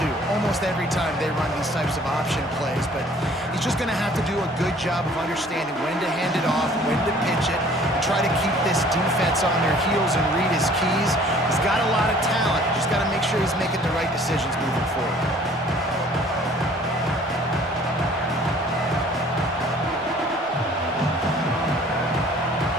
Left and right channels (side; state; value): both; normal; correlation 0.54